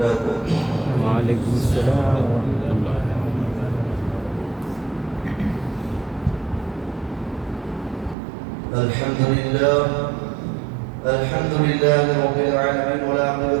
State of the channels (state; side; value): drops out; left; at 8.2 s